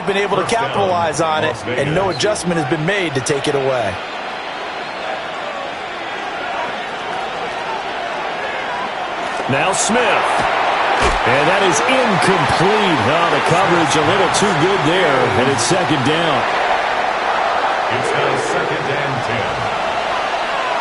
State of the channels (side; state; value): both; identical; correlation 1.00